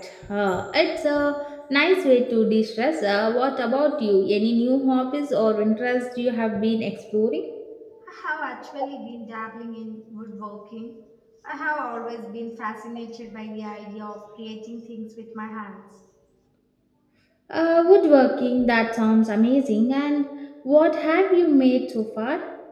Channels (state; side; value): identical; both; correlation 1.00